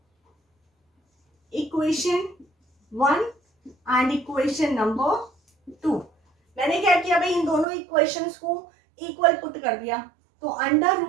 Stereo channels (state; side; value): drops out; left; at 7.7 s